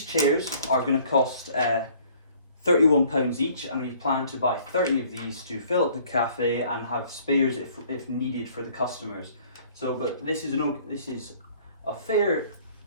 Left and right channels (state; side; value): inverted; both; correlation -0.56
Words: chairs are going to cost £31 each, and we plan to buy 30 of these to fill up the cafe and have spares if needed for the customers. So, but this is a fair